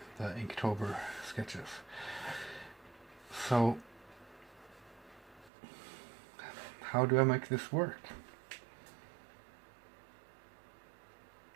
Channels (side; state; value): left; drops out; at 5.5 s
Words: the Inktober sketches. So how do I make this work?